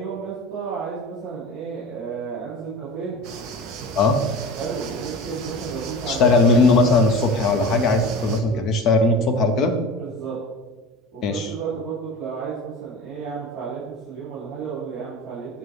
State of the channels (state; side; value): normal; both; correlation 0.34